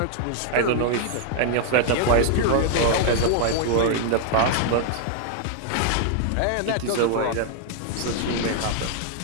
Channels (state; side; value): different; both; correlation 0.00